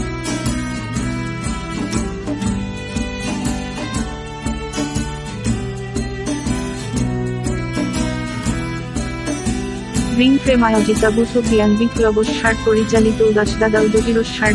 Ring frame আয়োজিত আবু সুফিয়ান বিপ্লবস্যার পরিচালিত উদাসদাদা ও জহিরস্যার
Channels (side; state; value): both; identical; correlation 1.00